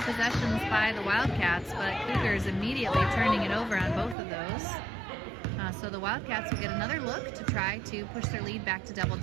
by the Wildcats, but Cougars immediately turning it over on both of those. So the Wildcats will get another look to try to push their lead back to double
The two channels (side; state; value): left; drops out; at 4.2 s